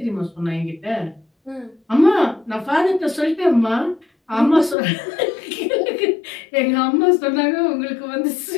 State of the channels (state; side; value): drops out; right; at 4.8 s